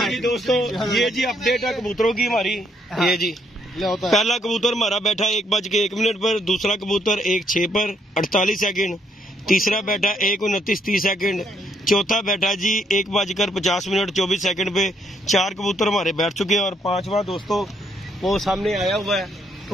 दोस्तों। ये जी अपडेट है कबूतरों की हमारी। ये जी पहला कबूतर हमारा बैठा 1:01 पर, दूसरा कबूतर 1:06 पर 48 सेकंड, तीसरा बैठा 1:29 सेकंड, चौथा बैठा जी 1:50 24 सेकंड पे। 4 कबूतर हमारे बैठ चुके हैं और 5वां दोस्तों वो सामने आया हुआ है।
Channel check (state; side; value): normal; both; correlation 0.71